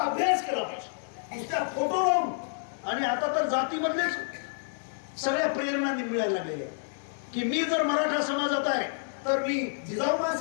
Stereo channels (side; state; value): right; silent; 59 dB below the other